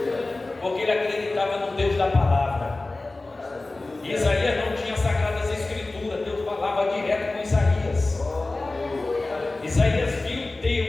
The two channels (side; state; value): right; quieter; 3.1 dB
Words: da palavra. Isaías não tinha sagradas escrituras, Deus falava direto com Isaías. Isaías viu